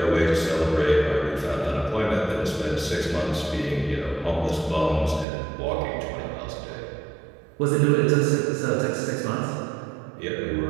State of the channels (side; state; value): left; drops out; at 5.2 s